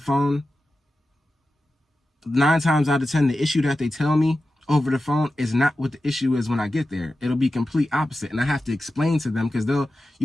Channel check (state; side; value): normal; both; correlation 0.93